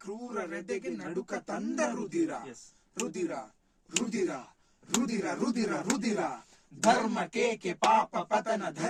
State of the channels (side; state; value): both; identical; correlation 1.00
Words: ಕ್ರೂರ ರೆದೆಗೆ ನಡುಕ ತಂದ ರುದಿರ. ರುದಿರ ರುದಿರ ರುದಿರ ರುದಿರ ರುದಿರ ಧರ್ಮ ಕೇಕೆ ಪಾಪ ಪತನ